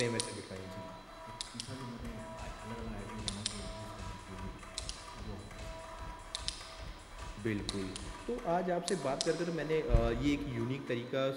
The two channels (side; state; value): both; identical; correlation 1.00